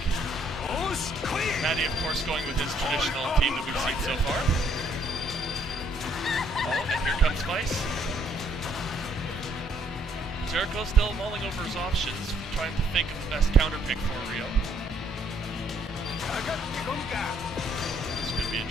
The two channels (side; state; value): both; normal; correlation 0.67